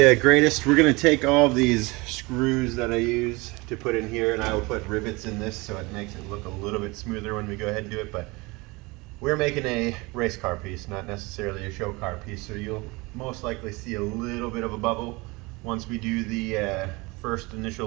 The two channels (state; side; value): quieter; left; 24.6 dB